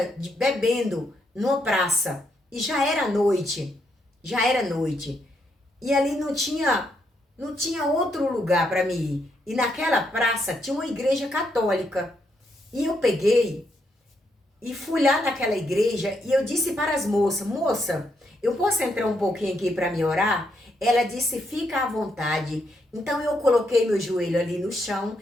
bebendo numa praça. E já era noite. E ali não tinha outro lugar para mim ir. E naquela praça tinha uma igreja católica. E eu peguei e fui lá naquela igreja e eu disse para as moças, moça, eu posso entrar um pouquinho aqui para me orar? Ela disse, fica à vontade. Então eu coloquei meu joelho ali no chão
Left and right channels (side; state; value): both; normal; correlation 0.77